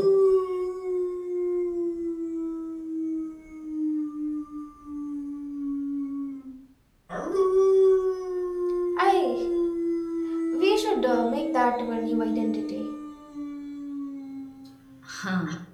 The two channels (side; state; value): both; identical; correlation 1.00